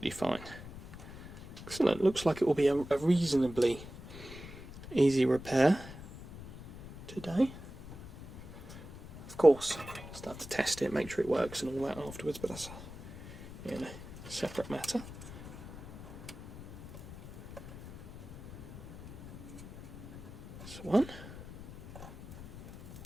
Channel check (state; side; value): noise; left; rumble, 14 dB below the sound